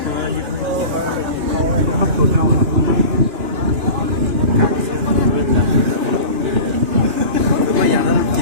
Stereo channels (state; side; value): late; left; 2.9 ms